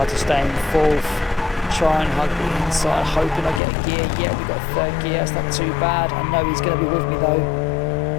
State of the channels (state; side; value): drops out; right; at 3.6 s